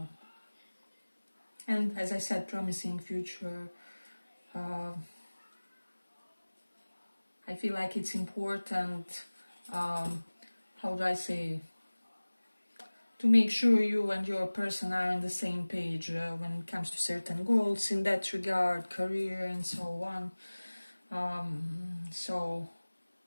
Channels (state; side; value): inverted; both; correlation -1.00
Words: and, as I said, promising future. I feel like it's important, how do I say, to make sure you and your person are on the same page when it comes to certain goals in that regard, career and so on. So